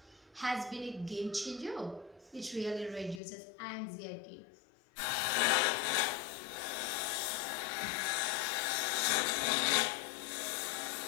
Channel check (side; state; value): right; drops out; at 3.2 s